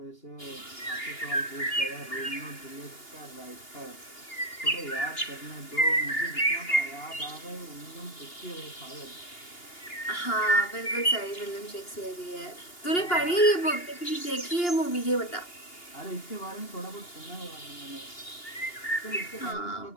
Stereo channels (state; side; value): late; right; 2.8 ms